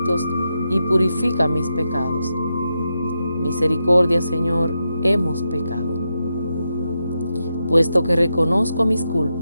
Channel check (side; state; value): both; inverted; correlation -0.87